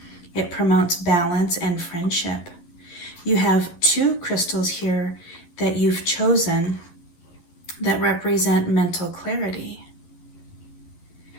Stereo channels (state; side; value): late; right; 11 ms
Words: It promotes balance and friendship. You have 2 crystals here that you've chosen that represent mental clarity.